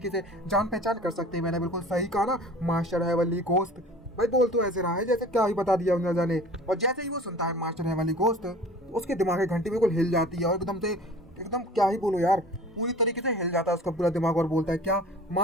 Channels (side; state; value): both; normal; correlation 0.44